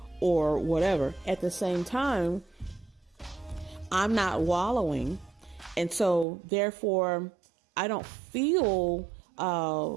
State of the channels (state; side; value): drops out; left; at 6.2 s